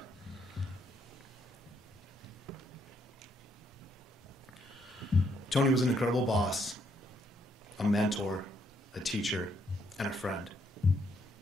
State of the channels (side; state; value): both; normal; correlation 0.73